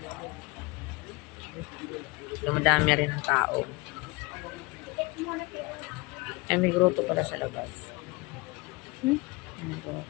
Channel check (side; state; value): right; quieter; 26.2 dB